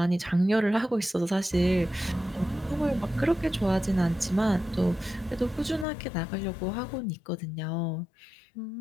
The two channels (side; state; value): right; drops out; at 5.9 s